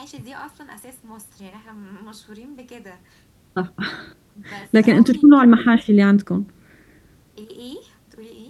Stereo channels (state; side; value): identical; both; correlation 1.00